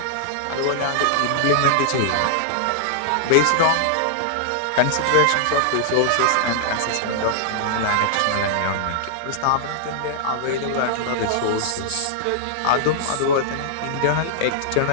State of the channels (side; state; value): both; different; correlation -0.01